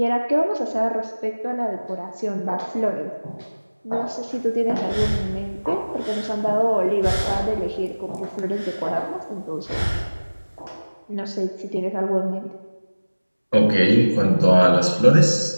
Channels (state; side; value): inverted; both; correlation -1.00